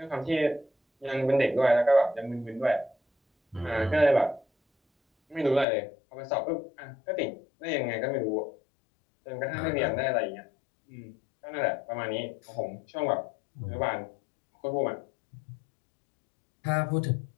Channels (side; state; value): right; drops out; at 5.7 s